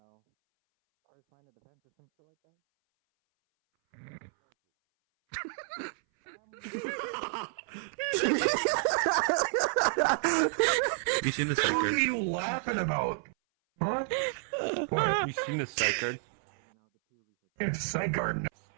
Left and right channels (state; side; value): silent; left; 58 dB below the other